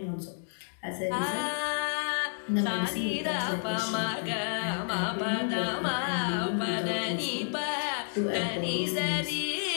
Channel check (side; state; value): right; silent; digital silence